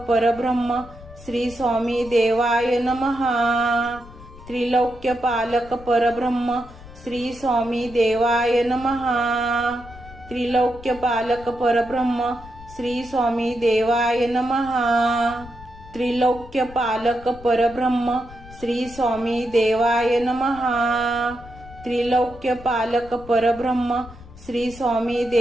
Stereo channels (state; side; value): noise; left; rumble, 18 dB below the sound